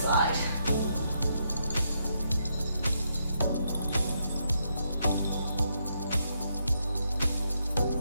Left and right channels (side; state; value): both; inverted; correlation -0.78